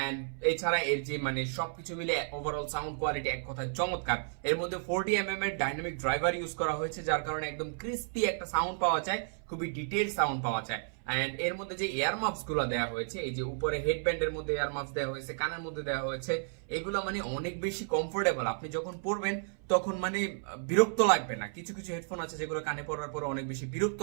এন্ড এছাড়া এর যে মানে সবকিছু মিলে ওভারঅল সাউন্ড কোয়ালিটি এক কথায় চমৎকার। এর মধ্যে 40mm এর ডাইনামিক ড্রাইভার ইউজ করা হয়েছে, যার কারণে একদম ক্রিস্পি একটা সাউন্ড পাওয়া যায়, খুবই ডিটেইল সাউন্ড পাওয়া যায়। এন্ড এর মধ্যে যে এয়ার মাফস গুলো দেওয়া হয়েছে, এই যে উপরে হেডব্যান্ডের মধ্যে এয়ার মাফস দেওয়া হয়েছে, কানের মধ্যে দেওয়া হয়েছে, এগুলো মানে অনেক বেশি কমফোর্টেবল। আপনি যখন পরবেন তখন মানে বিরক্ত লাগবে না। কিছু কিছু হেডফোন আছে যেগুলো কানে পরার পর অনেক বেশি বিরক্ত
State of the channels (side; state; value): left; silent; 56 dB below the other